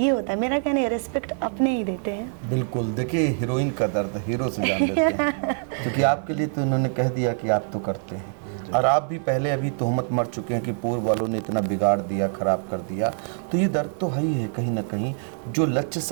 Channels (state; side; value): silent; left; 60 dB below the other